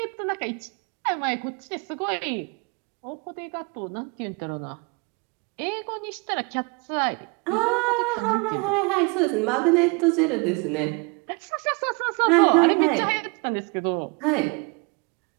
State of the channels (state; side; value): quieter; left; 30.6 dB